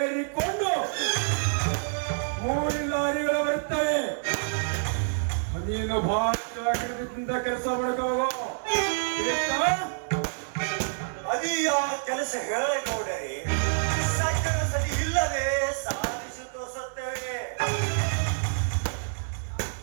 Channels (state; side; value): silent; left; digital silence